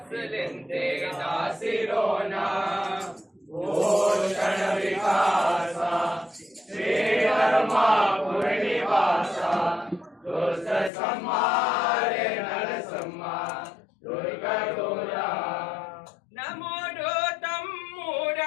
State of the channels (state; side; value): drops out; right; at 10.9 s